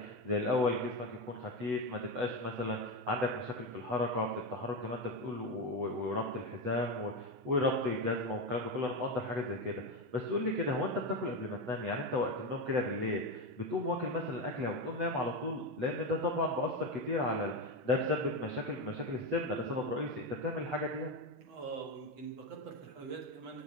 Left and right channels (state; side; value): late; left; 8.0 ms